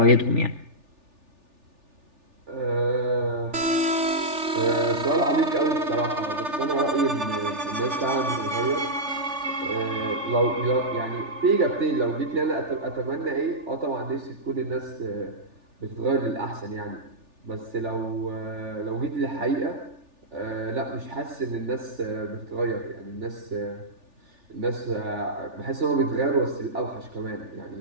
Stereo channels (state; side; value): late; left; 3.4 ms